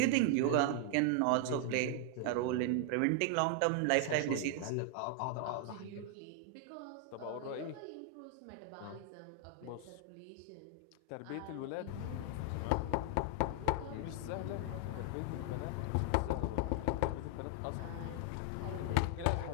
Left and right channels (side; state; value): both; different; correlation 0.00